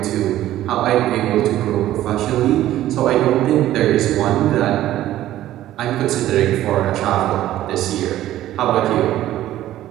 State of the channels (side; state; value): left; quieter; 13.7 dB